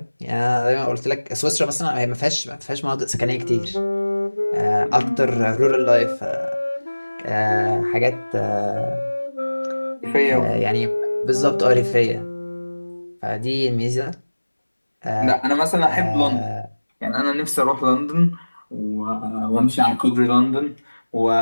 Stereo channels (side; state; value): both; inverted; correlation -1.00